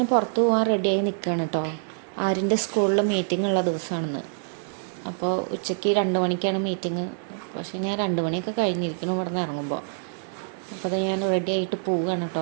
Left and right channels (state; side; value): silent; left; 61 dB below the other